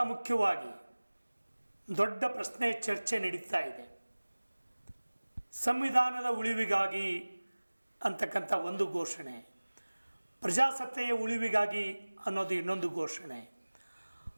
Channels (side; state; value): both; inverted; correlation -1.00